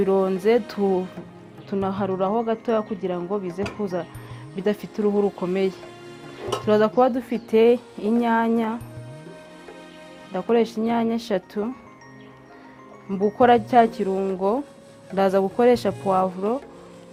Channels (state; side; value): identical; both; correlation 1.00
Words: tunaharuraho gatoya kugira ngo bize kuza bidafite uruhu rukomeye. Turaza kuba dufite inyanya, ndakoresha inyanya 3. Mbukora cya kirungo ndaza gukoresha poivro,